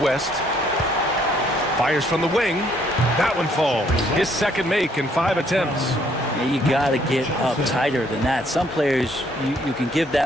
Fires from the wing. That one falls. His second make in 5 attempts. Yeah, you got to get up tighter than that. Some players you can give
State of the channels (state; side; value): normal; both; correlation 0.66